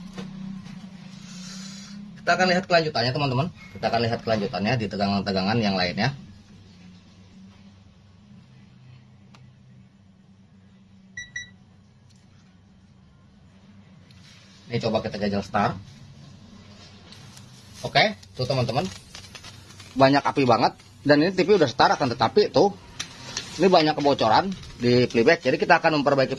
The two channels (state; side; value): identical; both; correlation 1.00